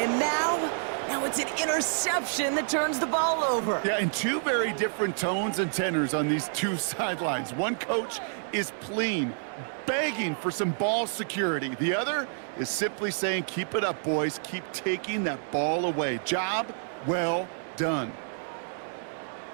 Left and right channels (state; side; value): silent; left; digital silence